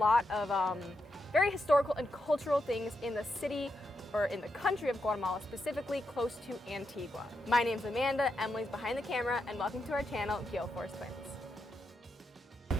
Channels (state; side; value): normal; both; correlation 0.84